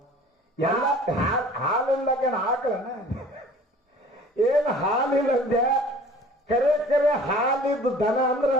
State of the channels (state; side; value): normal; both; correlation 0.47